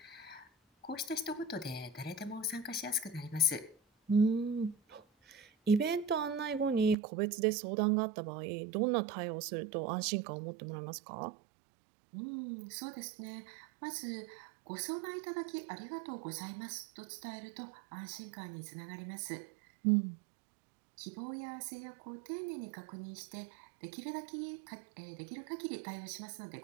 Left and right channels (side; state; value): left; drops out; at 7.0 s